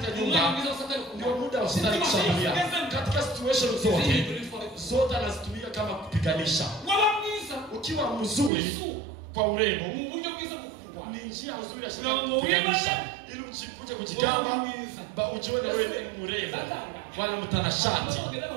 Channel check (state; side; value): drops out; left; at 8.5 s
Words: nyumba, ndio muda wa Shetani kushambulia. Katika situation zote anazitumia kama kupiganisha. Ukiwa mzuri kwa urembo, ni njia nzuri ya Shetani kupiganisha ili uchikuje kujigamba ujione wewe ni mrembo wala mtanashati.